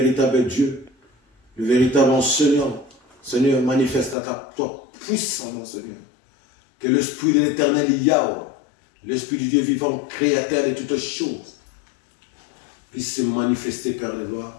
Dieu, le véritable enseignant. Seigneur, manifeste toi puissant, Seigneur. Que l'Esprit de l'Éternel Yahweh, l'Esprit du Dieu vivant, créateur de toutes choses, puisse se manifester, Père de gloire,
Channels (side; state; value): right; drops out; at 4.2 s